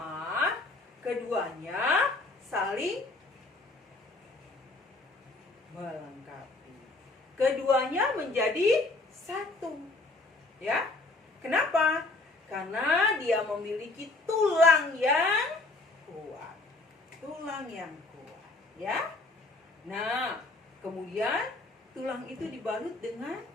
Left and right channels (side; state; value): right; quieter; 3.2 dB